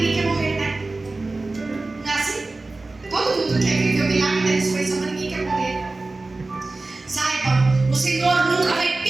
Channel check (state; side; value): quieter; left; 3.3 dB